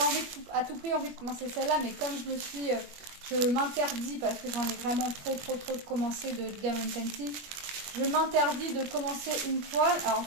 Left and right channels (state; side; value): late; left; 21 ms